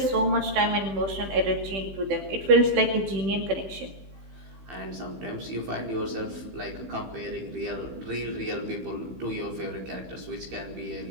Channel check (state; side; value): late; left; 15 ms